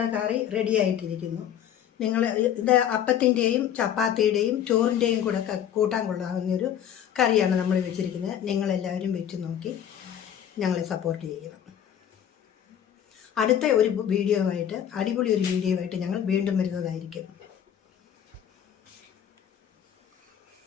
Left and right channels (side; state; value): right; quieter; 9.7 dB